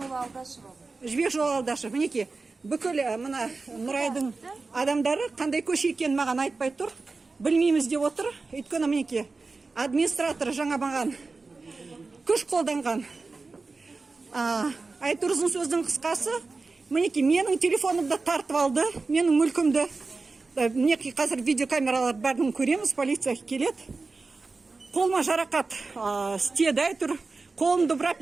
Алдашева. Жібек жолы Алдашева. Мінеки бүкіл мына Нұрайдың адамдары қандай көше екенін маған айтпай тұр. Білмейміз деп отыр. Өйткені мінеки администратор жаңа маған күш қолданған. Айтыр ұзын сөздің қысқасы, мінеки менің телефонымды тартып алды, менің мүлкімді. Мінеки қазір видеокамералар бәрін көреміз, полиция келеді. Қолыма жарақат істеді, айтыр. Қолымды бұрап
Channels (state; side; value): quieter; left; 3.9 dB